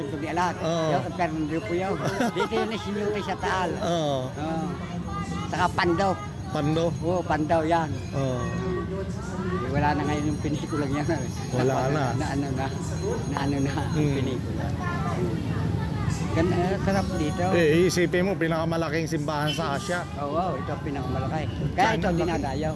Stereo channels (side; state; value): both; identical; correlation 1.00